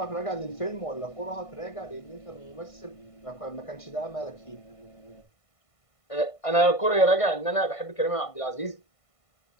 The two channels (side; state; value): right; late; 1.5 ms